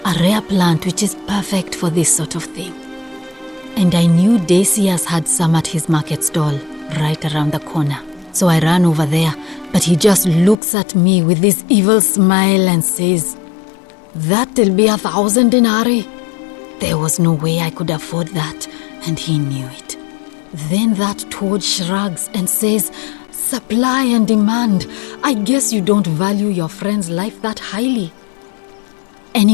a rare plant which is perfect for this sort of thing. And I knew Decius had some at his market stall, right around the corner. So I ran over there, but he just looks at me with this evil smile and says, "That'll be 1,000 denarii." There was no way I could afford that, and he knew it. Then that toad shrugs and says, "Supply and demand. I guess you don't value your friend's life that highly."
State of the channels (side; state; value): right; drops out; at 10.6 s